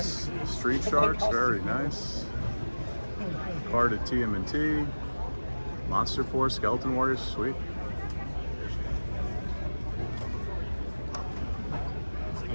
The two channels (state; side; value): inverted; both; correlation -1.00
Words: Street Sharks, very nice. Card at TMNT, Monster Force, Skeleton Warriors, sweet. It